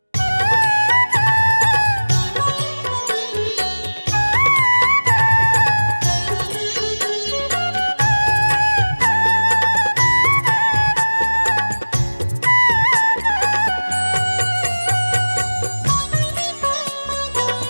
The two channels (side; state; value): both; inverted; correlation -1.00